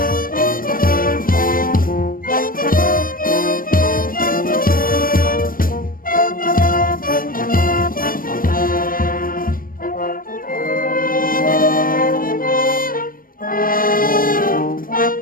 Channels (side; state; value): right; late; 0.41 ms